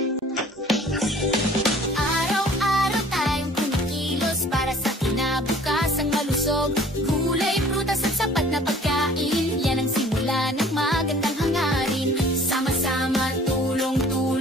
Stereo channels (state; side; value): normal; both; correlation 0.51